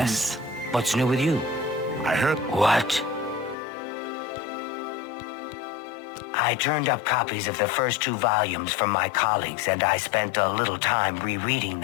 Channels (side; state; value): right; drops out; at 3.6 s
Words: What's new with you? I heard... What? I turned up copies of the first 2 volumes from my colleagues, and I spent a little time rereading